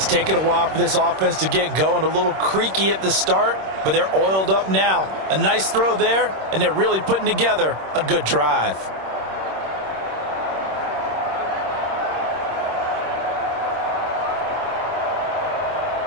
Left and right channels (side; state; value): left; late; 26 ms